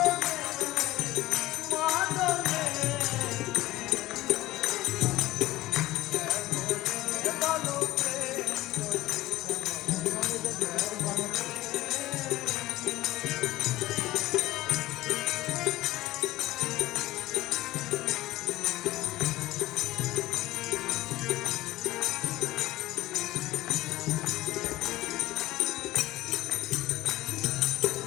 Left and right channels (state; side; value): quieter; right; 17.0 dB